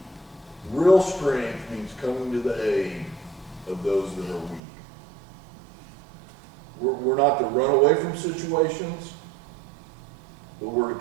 Real strength means coming to the aid of those that are weak. We're not to run away from situations, but we're to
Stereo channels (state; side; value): drops out; left; at 4.6 s